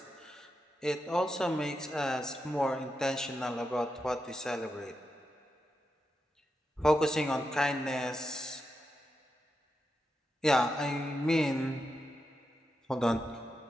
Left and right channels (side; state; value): both; normal; correlation 0.87